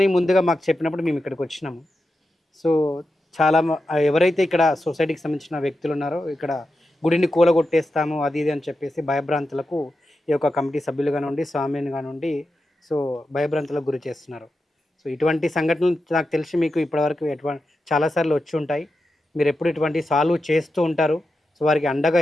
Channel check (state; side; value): normal; both; correlation 0.90